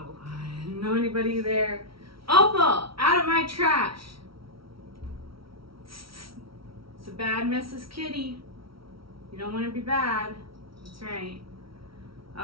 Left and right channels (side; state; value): left; late; 0.75 ms